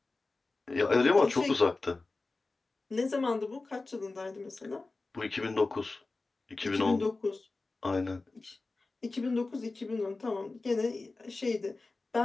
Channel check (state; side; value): quieter; right; 3.5 dB